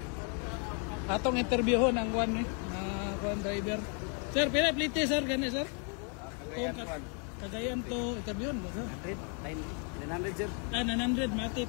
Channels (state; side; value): quieter; right; 39.5 dB